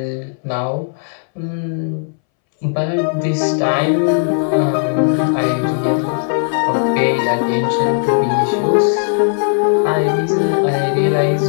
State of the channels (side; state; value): right; silent; 64 dB below the other